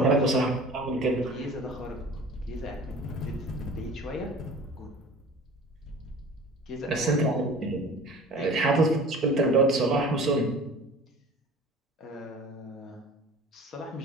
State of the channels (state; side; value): normal; both; correlation 0.43